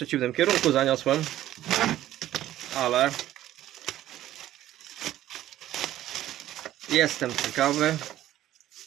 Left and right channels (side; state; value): left; quieter; 13.5 dB